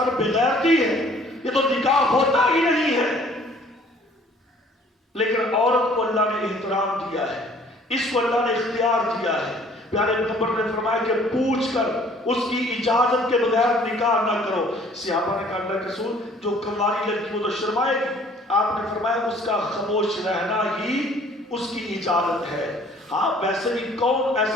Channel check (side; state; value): both; normal; correlation 0.55